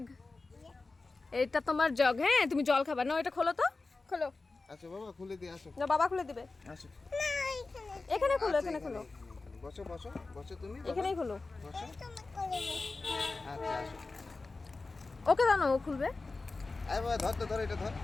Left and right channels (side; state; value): right; quieter; 3.6 dB